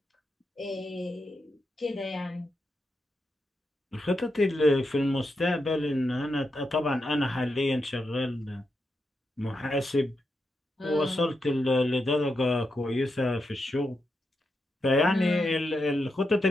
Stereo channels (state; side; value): normal; both; correlation 0.85